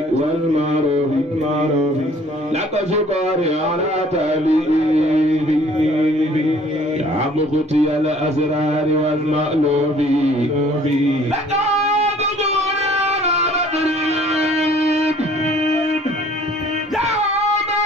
والمعروف لك شكري على تأليفي يا مختي الأسرار والمألوف لك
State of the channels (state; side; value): normal; both; correlation 0.55